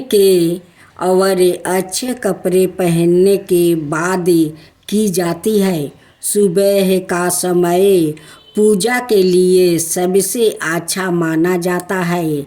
के और अच्छे कपड़े पहनने के बाद की जाती है। सुबह का समय पूजा के लिए सबसे अच्छा माना जाता है,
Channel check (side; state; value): both; identical; correlation 1.00